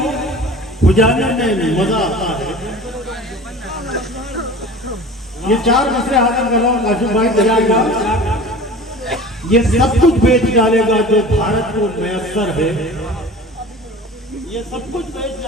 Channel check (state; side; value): normal; both; correlation 0.39